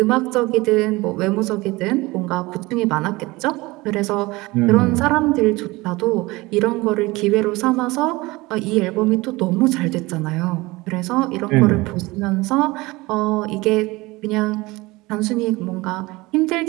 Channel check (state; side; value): quieter; left; 21.8 dB